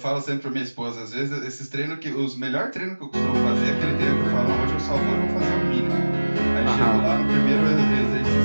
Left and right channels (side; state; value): both; inverted; correlation -1.00